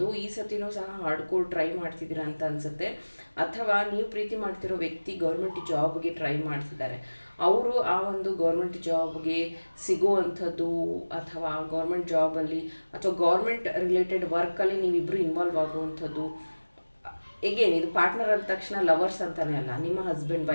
ಈ ಸತಿನೂ ಸಹ ಹಾರ್ಡ್ಕೋರ್ ಟ್ರೈ ಮಾಡ್ತಿದ್ದೀರಾ ಅಂತ ಅನಿಸುತ್ತೆ. ಅಥವಾ ನೀವು ಪ್ರೀತಿ ಮಾಡ್ತಿರೋ ವ್ಯಕ್ತಿ ಗೌರ್ಮೆಂಟ್ ಜಾಬ್ಗೆ ಟ್ರೈ ಮಾಡ್ತಿದ್ದಾರೆ, ಅವರು ಆ ಒಂದು ಗೌರ್ಮೆಂಟ್ ಜಾಬ್ಗೆ ಸಿಗುವಂಥದ್ದು ಅಥವಾ ಗೌರ್ಮೆಂಟ್ ಜಾಬಲ್ಲಿ ಅಥವಾ ಗೌರ್ಮೆಂಟ್ ರಿಲೇಟೆಡ್ ವರ್ಕಲ್ಲಿ ನೀವಿಬ್ಬರು ಇನ್ವಾಲ್ವ್ ಆಗುವಂಥದ್ದು ಎಗೇನ್ ಇದು ಪಾರ್ಟ್ನರ್ ಅಂದ ತಕ್ಷಣ ಲವರ್ಸ್ ಅಂತಲೇ ಅಲ್ಲ, ನಿಮ್ಮ ಹಸ್ಬೆಂಡ್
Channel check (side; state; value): both; inverted; correlation -1.00